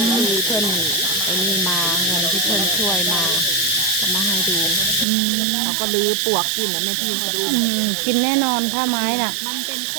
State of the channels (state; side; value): drops out; left; at 5.1 s